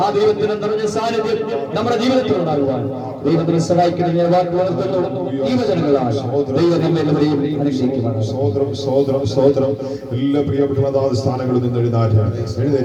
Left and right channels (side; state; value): both; identical; correlation 1.00